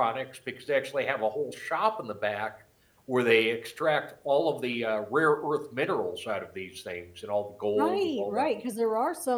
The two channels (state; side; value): identical; both; correlation 1.00